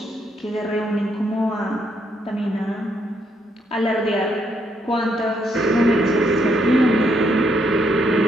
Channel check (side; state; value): both; normal; correlation 0.74